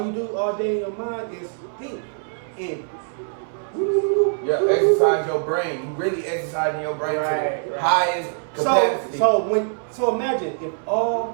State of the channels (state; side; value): silent; left; 63 dB below the other